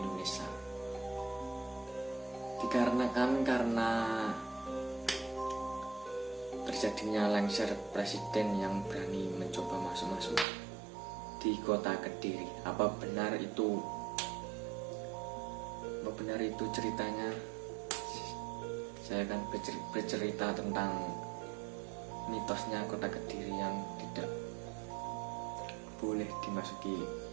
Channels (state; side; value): drops out; left; at 10.5 s